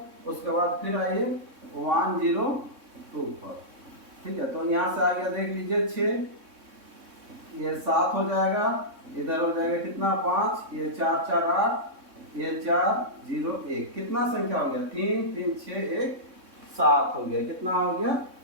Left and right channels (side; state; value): left; late; 3.6 ms